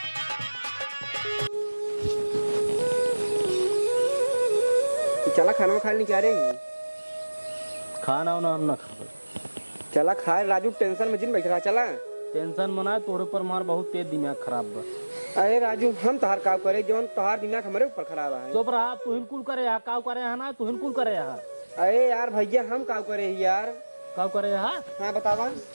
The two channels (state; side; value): inverted; both; correlation -1.00